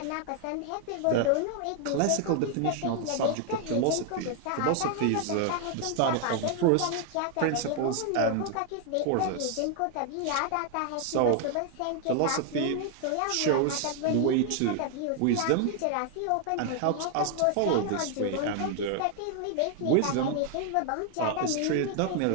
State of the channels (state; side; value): different; both; correlation 0.00